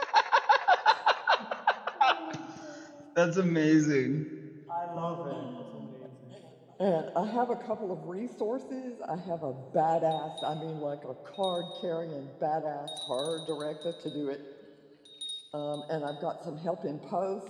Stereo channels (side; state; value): both; identical; correlation 1.00